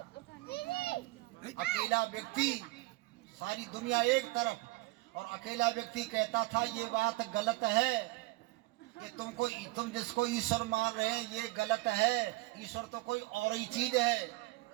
अकेला व्यक्ति, सारी दुनिया एक तरफ, और अकेला व्यक्ति कहता था ये बात गलत है कि तुम जिसको ईश्वर मान रहे हैं ये गलत है, ईश्वर तो कोई और ही चीज है।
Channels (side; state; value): left; quieter; 20.6 dB